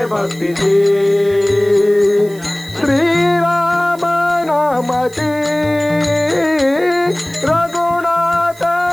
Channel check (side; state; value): right; noise; hiss, 22 dB below the sound